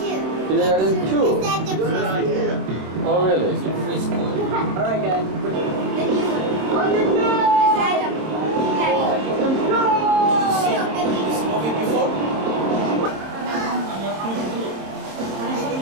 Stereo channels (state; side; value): late; left; 26 ms